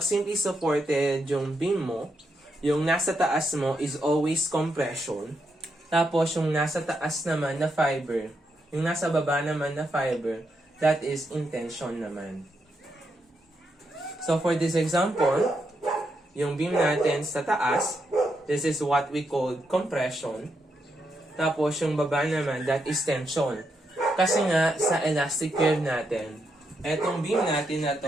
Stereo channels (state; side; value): normal; both; correlation 0.81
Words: simply supported yung beam mo, yung nasa taas mo is always compression. Tapos yung nasa taas naman na fiber, yung nasa baba naman na fiber, that is intention naman. So for this example, yung beam natin sa taas, this is what we call compression. Tapos yung baba naman, that is tension. Kasi nga, sa elastic curve natin, etong beam natin na